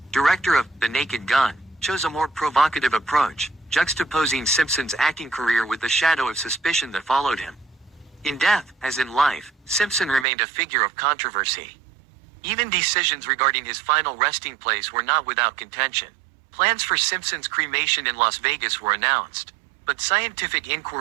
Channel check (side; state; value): left; drops out; at 10.2 s